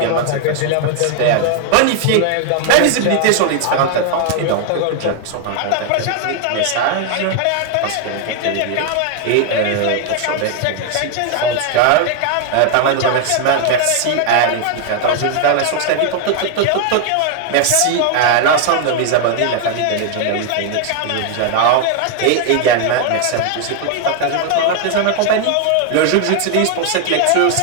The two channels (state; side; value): different; both; correlation 0.00